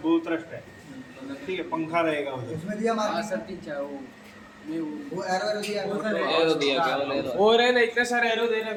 थ्रस्ट है, ठीक है। पंखा रहेगा उधर, उसमें दिया वो एरो दिया और है ना, इतने सारे एरो दे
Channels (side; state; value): both; identical; correlation 1.00